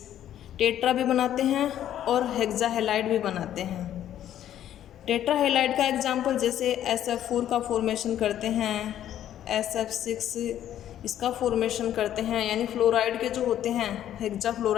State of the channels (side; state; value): right; quieter; 11.3 dB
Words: टेट्रा भी बनाते हैं और हेक्सा हेलाइड भी बनाते हैं। टेट्रा हेलाइड का एग्जाम्पल जैसे SF4 का फॉर्मेशन करते हैं, SF6 इसका फॉर्मेशन करते हैं, यानी फ्लोराइड के जो होते हैं हेक्सा